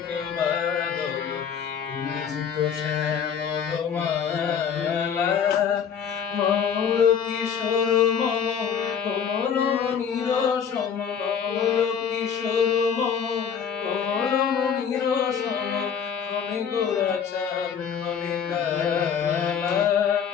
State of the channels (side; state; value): right; quieter; 7.5 dB